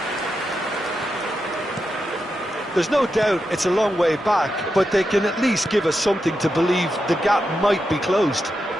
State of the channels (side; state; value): both; normal; correlation 0.87